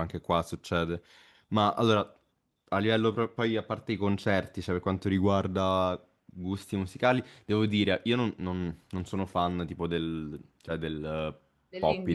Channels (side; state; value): both; identical; correlation 1.00